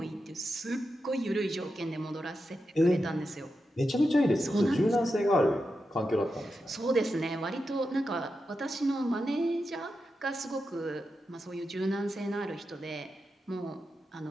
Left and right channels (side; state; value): both; normal; correlation 0.89